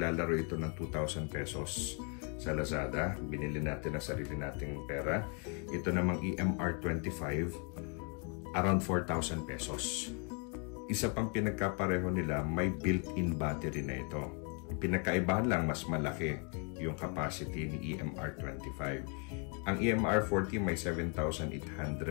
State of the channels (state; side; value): quieter; right; 37.5 dB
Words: ito ng 2,000 pesos sa Lazada. Binili natin ang sarili nating pera. Ito namang EMR 25, around 4,000 pesos. Isa pang pinagkapareho nila, may built-in battery na ito. Ang pinagkaibahan lang, mas malaki yung capacity ni EMR 25. Ang EMR 40 may